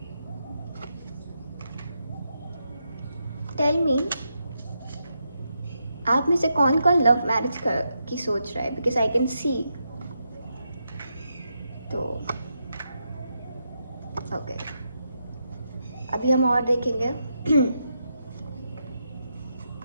Tell me, आप में से कौन कौन लव मैरिज की सोच रहा है, बिकॉज आई कैन सी। तो ओके, अभी हम और देखेंगे।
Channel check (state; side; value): inverted; both; correlation -0.83